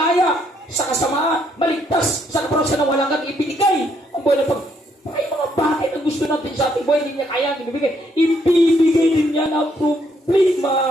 sa kasamaan, maligtas sa kaparusahan na walang kang ibinigay ang buhay ng Panginoon. Ay mga bagay na gusto natin sa ating buhay, hindi niya kaya ibibigay. Ibibigay din niya ng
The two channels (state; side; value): normal; both; correlation 0.71